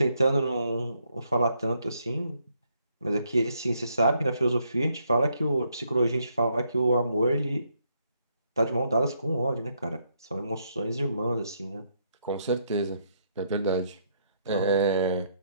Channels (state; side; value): inverted; both; correlation -0.73